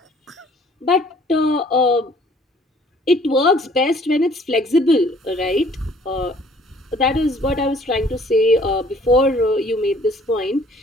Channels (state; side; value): normal; both; correlation 0.57